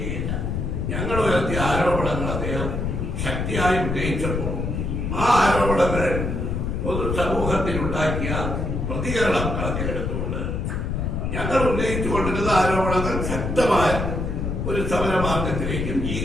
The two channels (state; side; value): noise; left; rumble, 2 dB below the sound